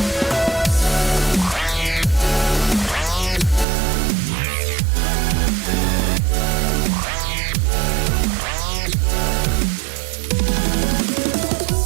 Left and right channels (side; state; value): left; drops out; at 3.7 s